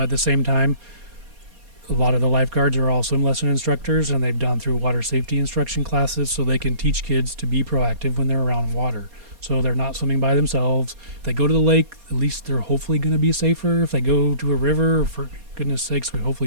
the same time, a lot of the lifeguards are all swim lesson instructors, and they've gone through water safety instruction classes so they can teach kids to be proactive when they're around water. So they're not swimming by themselves. If they go to the lake, at least they're hopefully going to be safer. If they go to a river, for goodness sakes,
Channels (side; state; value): left; late; 4.2 ms